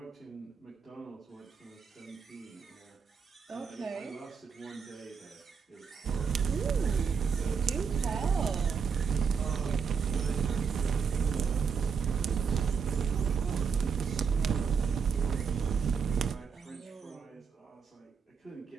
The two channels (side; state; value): left; quieter; 6.0 dB